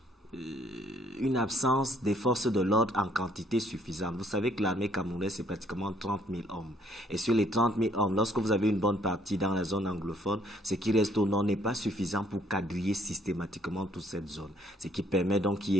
une absence des forces de l'ordre en quantité suffisante. Vous savez que l'armée camerounaise, c'est pratiquement 30 000 hommes. Et sur les 30 000 hommes, lorsque vous avez une bonne partie dans la zone anglophone, ce qui reste au nord n'est pas suffisant pour quadriller systématiquement toute cette zone. Ce qui permet donc qu'il y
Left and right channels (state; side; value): normal; both; correlation 0.64